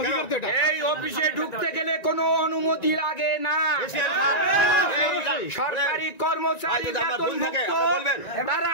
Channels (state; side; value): late; right; 1.9 ms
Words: কেন এই অফিসে ঢুকতে গেলে কোনো অনুমতি লাগে না সরকারি কর্মচারী তারা